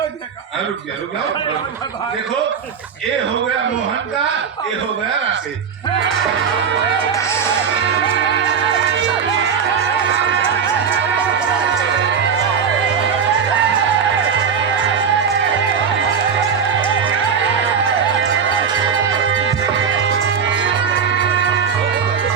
रुक गया देखो ये हो गया मोहन का, ये हो गया राकेश।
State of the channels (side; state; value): left; quieter; 6.7 dB